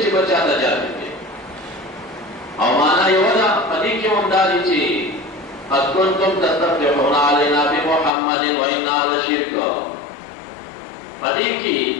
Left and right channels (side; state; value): right; drops out; at 8.1 s